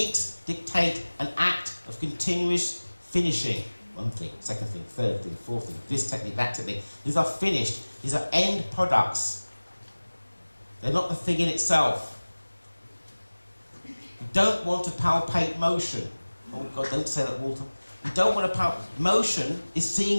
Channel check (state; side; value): inverted; both; correlation -1.00